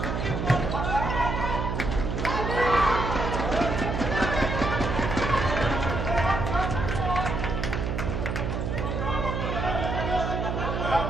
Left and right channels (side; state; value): right; noise; hum, 2 dB below the sound